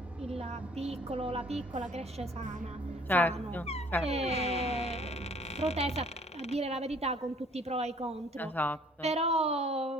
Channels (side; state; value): both; normal; correlation 0.57